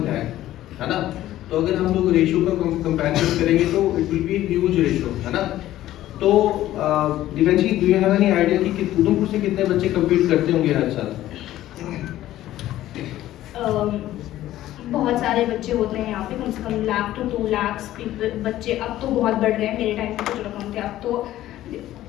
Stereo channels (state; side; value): quieter; right; 14.1 dB